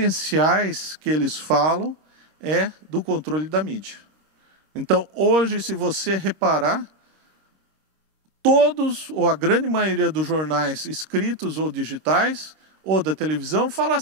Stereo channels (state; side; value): late; left; 26 ms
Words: que eles falam é do controle da mídia. Então, hoje, se você reparar, todos, ou a grande maioria dos jornais escritos ou digitais, ou da televisão, fala